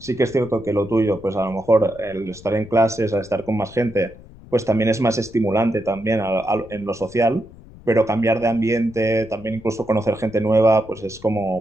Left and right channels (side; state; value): left; noise; rumble, 20 dB below the sound